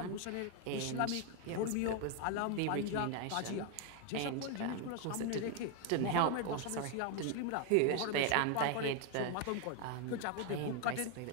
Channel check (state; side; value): different; both; correlation 0.01